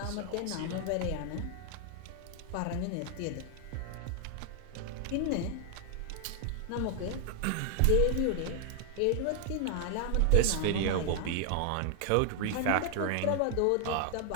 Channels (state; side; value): different; both; correlation 0.00